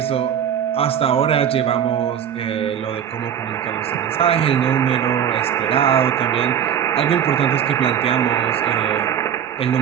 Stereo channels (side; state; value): left; quieter; 9.1 dB